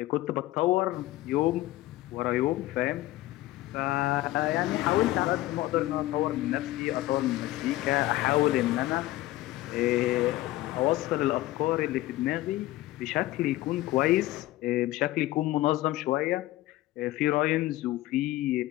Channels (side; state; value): right; quieter; 16.7 dB